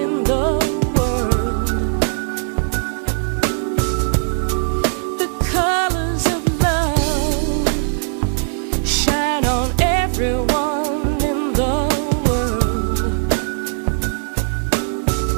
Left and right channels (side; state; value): left; silent; digital silence